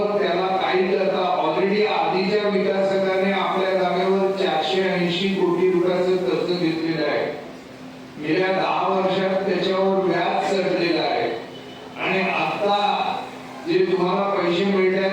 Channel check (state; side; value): identical; both; correlation 1.00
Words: त्याला काही करता ऑलरेडी आधीच्या विकासकाने आपल्या जागेवर 480 कोटी रुपयाचं कर्ज घेतलेलं आहे. गेल्या 10 वर्षात त्याच्यावर व्याज चढलेलं आहे आणि आता जे तुम्हाला पैसे